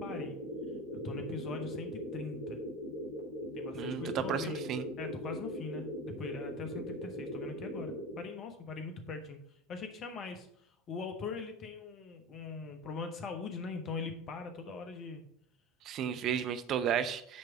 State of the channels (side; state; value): both; normal; correlation 0.31